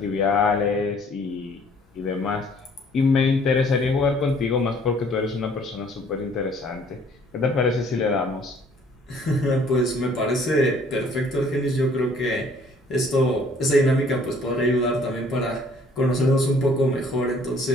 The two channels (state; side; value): normal; both; correlation 0.58